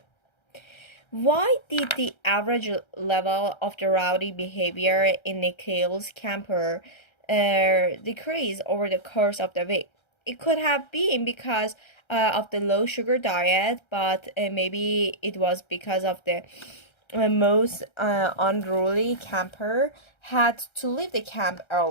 Why did the average level of the rowdy behavior in Nikhil's camper decrease over the course of the week? It could have been because of the low sugar diet, but maybe it was because of the most unruly camper had to leave the camp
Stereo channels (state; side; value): late; right; 1.3 ms